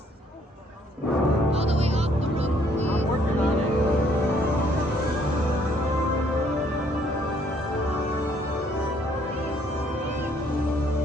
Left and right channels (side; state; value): both; normal; correlation 0.65